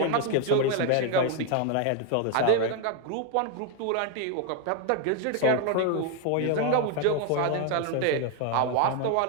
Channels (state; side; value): different; both; correlation 0.01